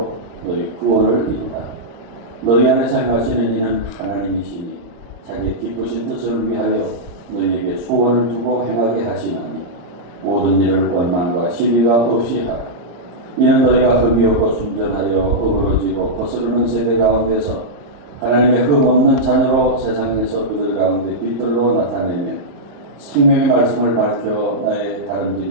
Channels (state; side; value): late; left; 34 ms